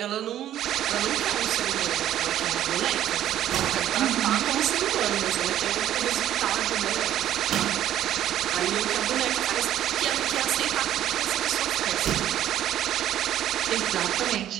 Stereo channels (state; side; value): quieter; left; 11.7 dB